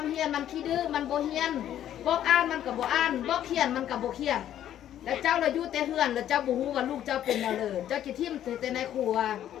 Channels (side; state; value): right; quieter; 11.2 dB